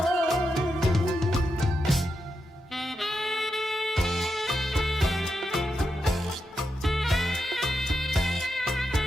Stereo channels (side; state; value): both; normal; correlation 0.86